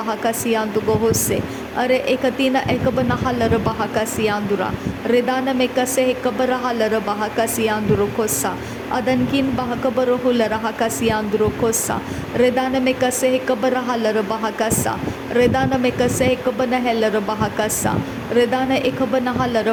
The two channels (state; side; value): identical; both; correlation 1.00